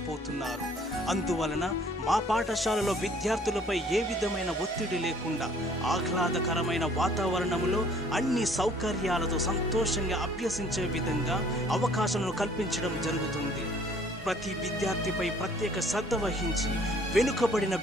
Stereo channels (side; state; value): both; normal; correlation 0.57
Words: అందువలన మా పాఠశాలలో విద్యార్థులపై ఏ విధమైన ఒత్తిడి లేకుండా ఆహ్లాదకరమైన వాతావరణంలో అన్ని సౌకర్యాలతో సంతోషంగా అభ్యసించే విధంగా అవకాశాలను కల్పించడం జరుగుతుంది. ప్రతి విద్యార్థిపై ప్రత్యేక శ్రద్ధ వహించి వెనుకబడిన